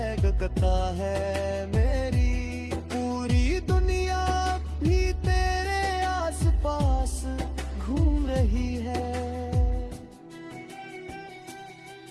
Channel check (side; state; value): both; identical; correlation 1.00